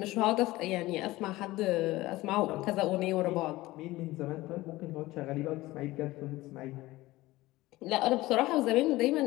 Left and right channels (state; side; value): quieter; right; 18.4 dB